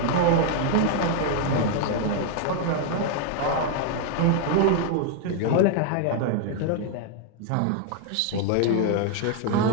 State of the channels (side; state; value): both; different; correlation 0.00